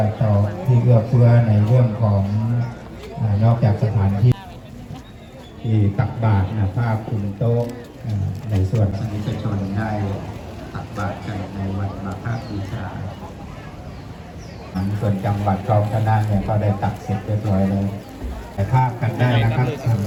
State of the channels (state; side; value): identical; both; correlation 1.00